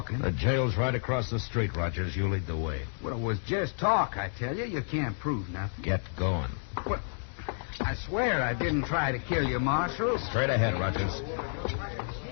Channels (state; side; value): silent; right; digital silence